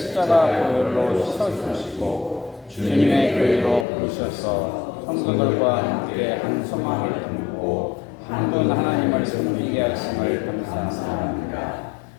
보혈로 씻어주시고 주님의 교회로 부르셔서 성도들과 함께 한 소망을 품고 한 분 하나님을 섬기게 하심을 감사합니다.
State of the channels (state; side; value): drops out; right; at 3.9 s